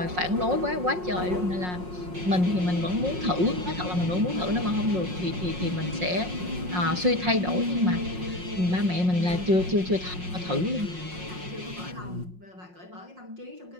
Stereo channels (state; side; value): late; left; 5.5 ms